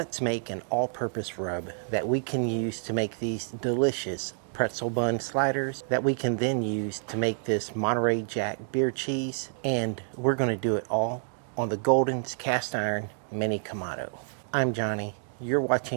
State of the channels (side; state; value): left; silent; digital silence